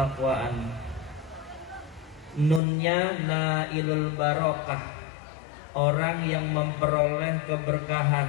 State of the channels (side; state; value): right; drops out; at 2.6 s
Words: Nunnya nailul barokah, orang yang memperoleh